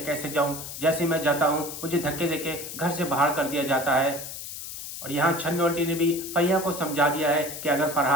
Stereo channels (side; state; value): left; noise; hiss, 9 dB below the sound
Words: कैसे जाऊं, जैसे मैं जाता हूं मुझे धक्के देके घर से बाहर कर दिया जाता है। और यहाँ छन्नू आंटी ने भी फरिया को समझा दिया है कि अगर